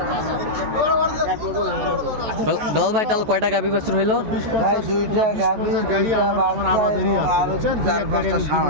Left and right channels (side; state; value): left; late; 14 ms